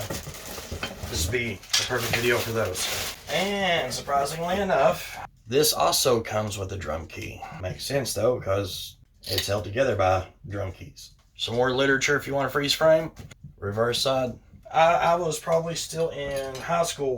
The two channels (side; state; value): both; identical; correlation 1.00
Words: this would be the perfect video for those. And surprisingly enough, this also comes with a drum key. Makes sense though, because it's held together by drum keys. Some more literature if you want a freeze frame. Reverse side. I was probably still in high